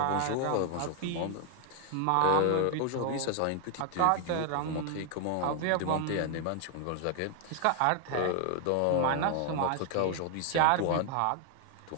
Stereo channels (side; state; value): both; different; correlation 0.00